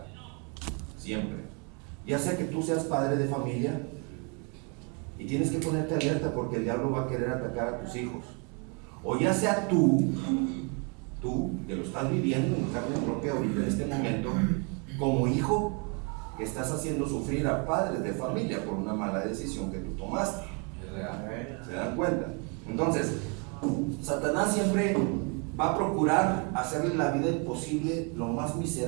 Siempre. Ya sea que tú seas padre de familia y tienes que ponerte alerta porque el diablo va a querer atacar a tus hijos, o ya sea tú que lo estás viviendo en carne propia ahorita en este momento, como hijo que estás haciendo sufrir a padres de familia por una mala decisión que tú tomaste. ¿Se dan cuenta? Entonces, Satanás siempre va a procurar hacerle la vida imposible, lo más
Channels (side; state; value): left; quieter; 34.8 dB